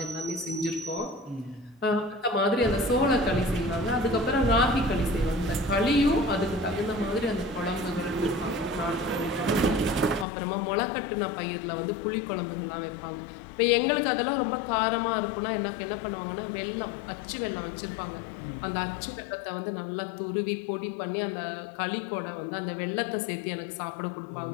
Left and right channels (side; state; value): right; drops out; at 10.2 s